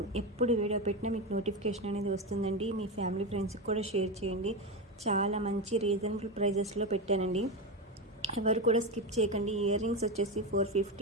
ఎప్పుడు వీడియో పెట్టినా మీకు నోటిఫికేషన్ అనేది వస్తుందండి. మీ ఫ్యామిలీ ఫ్రెండ్స్కి కూడా షేర్ చేయండి. చాలా మంచి రీజనబుల్ ప్రైజెస్లో పెట్టానండి, ఎవరు కూడా స్కిప్ చేయకండి. ఇయర్ రింగ్స్ వచ్చేసి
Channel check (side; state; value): both; normal; correlation 0.15